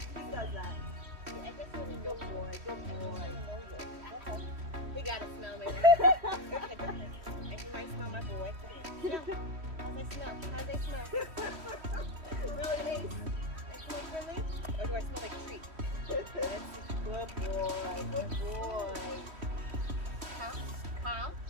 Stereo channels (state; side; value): late; left; 3.1 ms